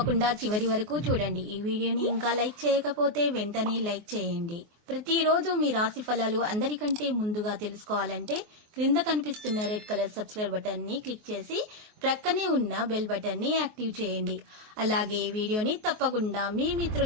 చివరి వరకు చూడండి. ఈ వీడియోని ఇంకా లైక్ చేయకపోతే వెంటనే లైక్ చేయండి. ప్రతిరోజు మీ రాశి ఫలాలు అందరికంటే ముందుగా తెలుసుకోవాలంటే క్రింద కనిపిస్తున్న రెడ్ కలర్ సబ్స్క్రైబ్ బటన్ ని క్లిక్ చేసి ప్రక్కనే ఉన్న బెల్ బటన్ ని యాక్టివ్ చేయండి. అలాగే ఈ వీడియోని తప్పకుండా మీ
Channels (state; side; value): late; left; 24 ms